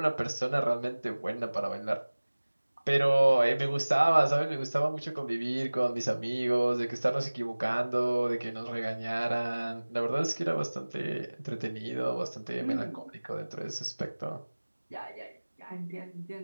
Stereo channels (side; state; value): both; inverted; correlation -1.00